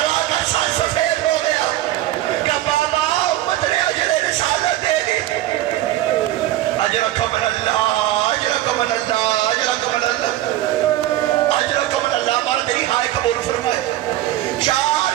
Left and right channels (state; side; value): quieter; left; 14.5 dB